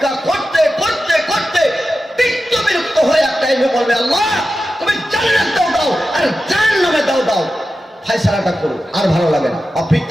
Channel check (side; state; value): both; normal; correlation 0.92